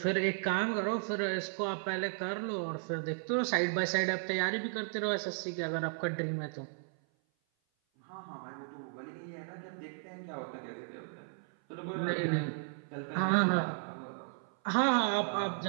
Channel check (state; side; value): silent; left; 55 dB below the other